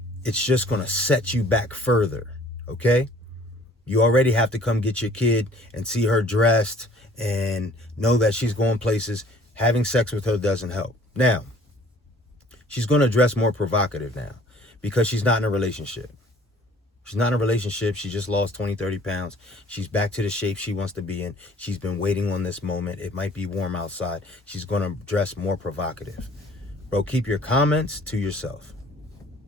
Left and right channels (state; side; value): normal; both; correlation 0.54